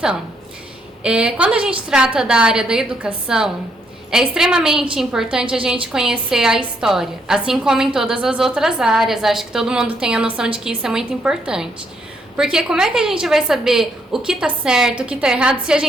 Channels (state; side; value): normal; both; correlation 0.73